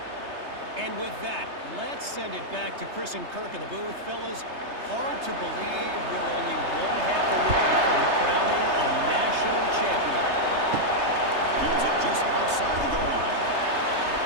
And with that, let's send it back to Chris and Kirk in the booth. Fellas, hard to believe we're only one half away from crowning a national champion. Fields it just outside the goal line.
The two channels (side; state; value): left; late; 3.3 ms